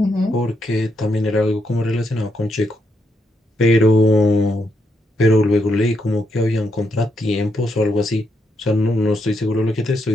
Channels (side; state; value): both; normal; correlation 0.79